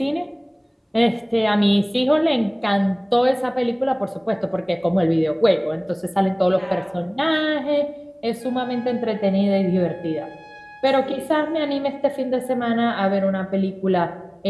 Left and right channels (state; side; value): identical; both; correlation 1.00